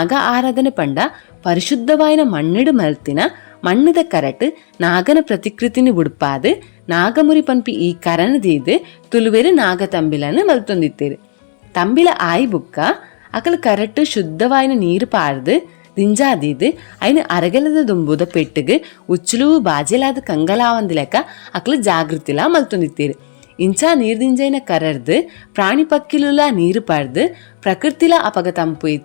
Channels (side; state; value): right; silent; 70 dB below the other